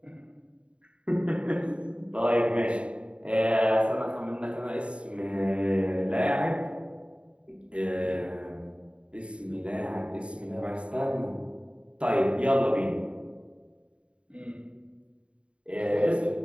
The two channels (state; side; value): late; left; 0.059 ms